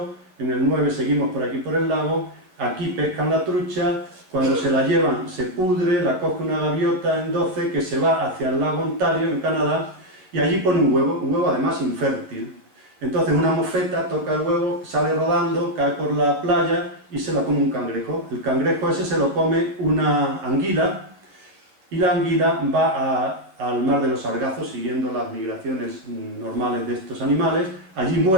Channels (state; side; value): late; left; 11 ms